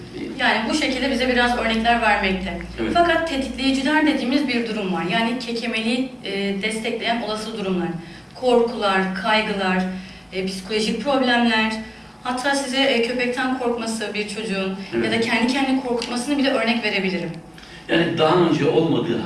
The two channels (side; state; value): both; identical; correlation 1.00